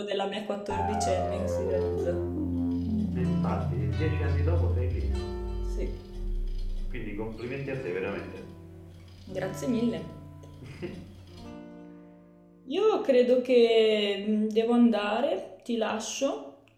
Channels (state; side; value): identical; both; correlation 1.00